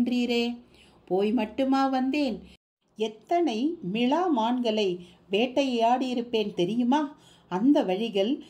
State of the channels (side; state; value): both; identical; correlation 1.00